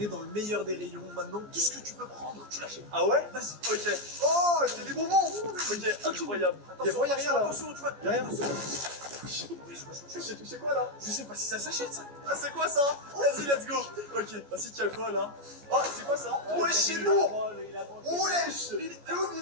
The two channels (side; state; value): left; late; 14 ms